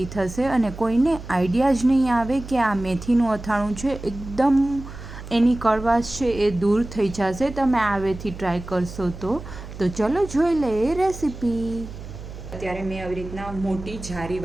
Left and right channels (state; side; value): noise; right; hum, 12 dB below the sound